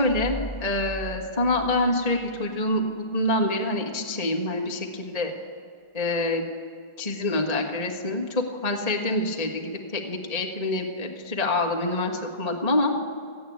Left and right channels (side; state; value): right; late; 1.8 ms